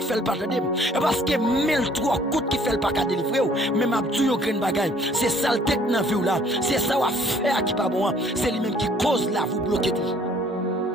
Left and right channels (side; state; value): both; normal; correlation 0.59